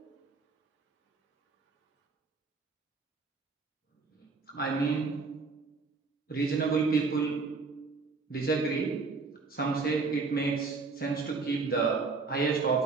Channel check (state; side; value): quieter; left; 4.3 dB